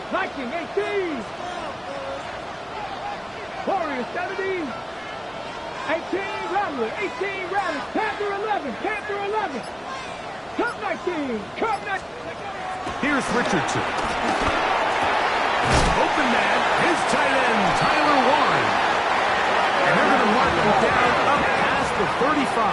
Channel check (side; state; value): both; identical; correlation 1.00